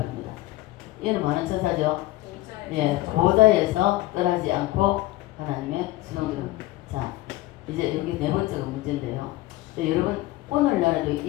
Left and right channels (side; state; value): right; quieter; 17.5 dB